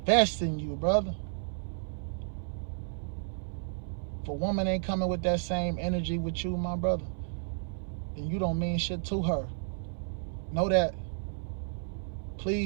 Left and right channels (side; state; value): left; silent; 56 dB below the other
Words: in you, brother. If a woman ain't coming with that same energy with you, my brother, then you don't mean shit to her. Know that.